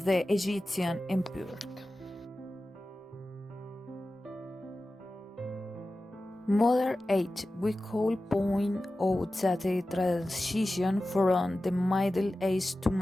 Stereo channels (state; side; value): normal; both; correlation 0.95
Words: the Egyptian empire. Modern age, we could point out that the transition from the Middle Age to